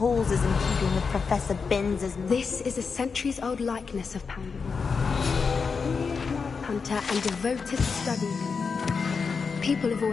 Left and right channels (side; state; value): right; quieter; 5.3 dB